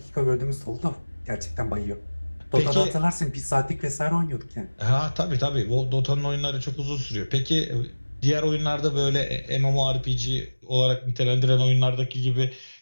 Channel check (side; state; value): both; inverted; correlation -1.00